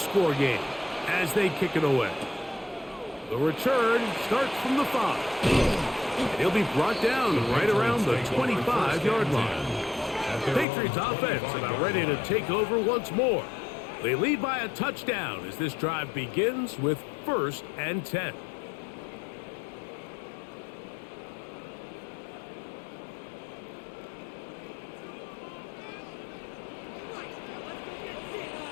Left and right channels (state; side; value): drops out; right; at 10.7 s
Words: game as they kick it away. The return starts from the 5. He'll be brought down right around the 25-yard line. The Patriots offense about ready to take over once more. They lead by a touchdown as this drive begins with 1st and 10.